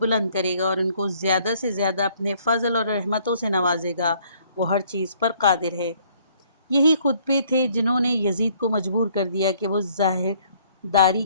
کرے گا اور ان کو زیادہ سے زیادہ اپنے فضل اور رحمتوں سے نوازے گا، وہ ہر چیز پر قادر ہے۔ یہی خطبے تھے جنہوں نے یزید کو مجبور کر دیا کہ وہ ظاہر داری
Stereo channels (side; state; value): both; inverted; correlation -0.62